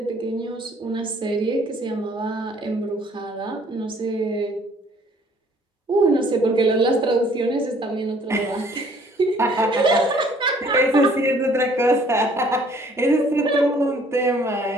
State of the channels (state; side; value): normal; both; correlation 0.59